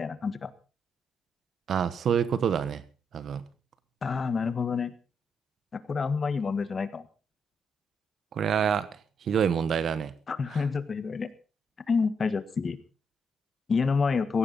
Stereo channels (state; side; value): normal; both; correlation 0.77